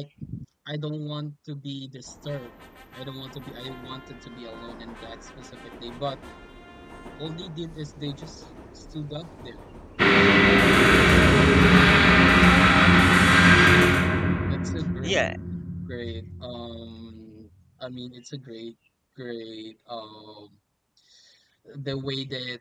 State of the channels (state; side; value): identical; both; correlation 1.00